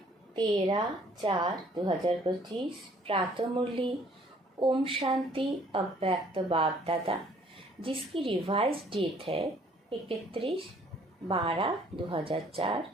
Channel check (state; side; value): normal; both; correlation 0.60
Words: 13/4/2025 प्रातः मुरली ओम शांति अव्यक्त बाप दादा, जिसकी रिवाइज डेट है 31/12/2004